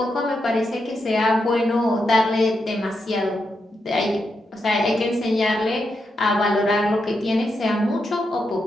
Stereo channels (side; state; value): both; normal; correlation 0.84